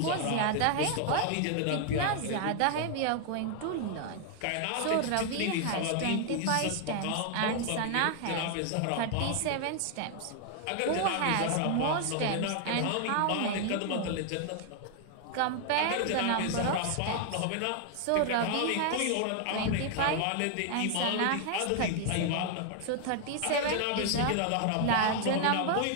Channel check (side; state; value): both; different; correlation 0.00